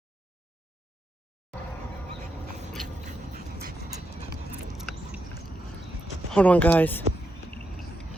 Hold on, guys.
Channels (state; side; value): normal; both; correlation 0.83